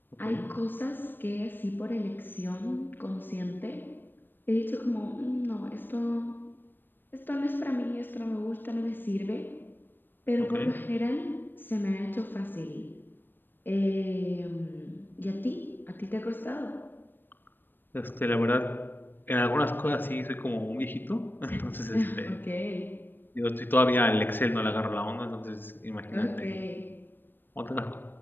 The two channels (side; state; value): right; late; 0.094 ms